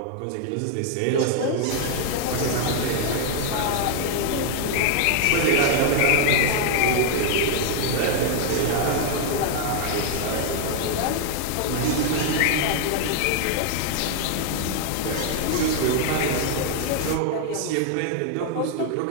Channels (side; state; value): both; different; correlation 0.00